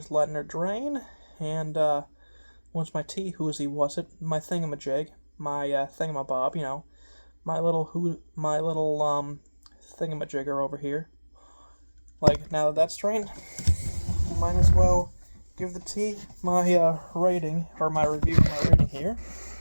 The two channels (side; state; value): both; inverted; correlation -1.00